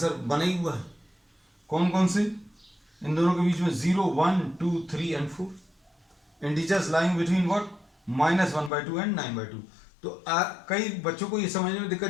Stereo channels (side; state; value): right; drops out; at 8.7 s